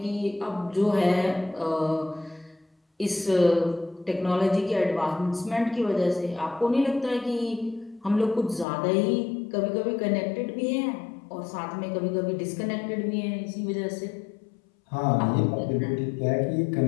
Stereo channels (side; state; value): right; drops out; at 8.7 s